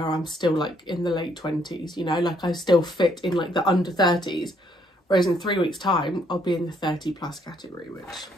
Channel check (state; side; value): normal; both; correlation 0.69